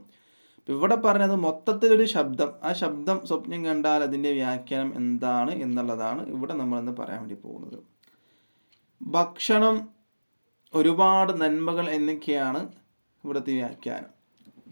ഇവിടെ പറഞ്ഞത് മൊത്തത്തിലൊരു ശബ്ദം, ആ ശബ്ദം സ്വപ്നം കണ്ടാൽ അതിൻ്റെ വ്യാഖ്യാനം എന്താണ് എന്നുള്ളതാണ് ഇവിടെ നമ്മളിന്ന് പറയാൻ വേണ്ടി പോകുന്നത്. ഭക്ഷണം, ഒരുപാട് നന്മകൾ എന്നൊക്കെയാണ് ഇവിടുത്തെ വ്യാഖ്യാനം.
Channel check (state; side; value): inverted; both; correlation -1.00